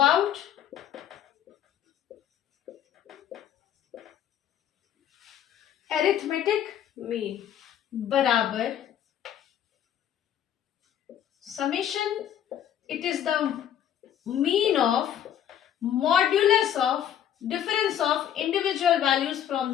arithmetic mean बराबर summation, it is the mean of modulus of difference of individual values from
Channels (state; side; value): quieter; right; 10.2 dB